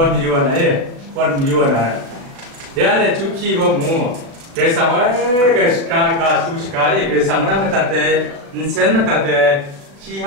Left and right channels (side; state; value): left; late; 36 ms